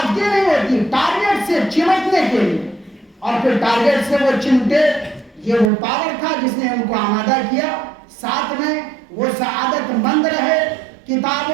نہیں ہوتی ٹارگٹ سے چمٹنے کے لیے، اور پھر ٹارگٹ سے وہ چمٹے۔ یہ وہ پاور تھا جس نے ان کو آمادہ کیا، ساتھ میں وہ سعادت مند رہے،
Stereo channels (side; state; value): left; drops out; at 5.7 s